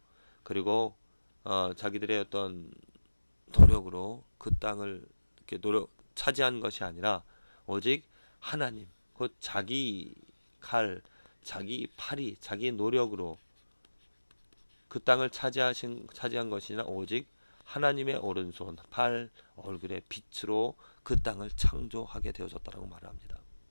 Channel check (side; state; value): both; inverted; correlation -1.00